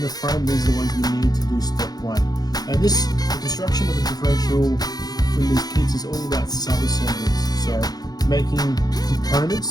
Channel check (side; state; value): right; late; 0.19 ms